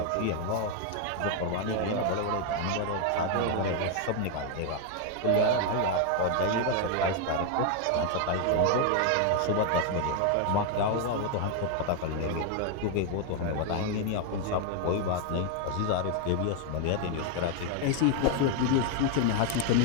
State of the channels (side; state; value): both; different; correlation 0.00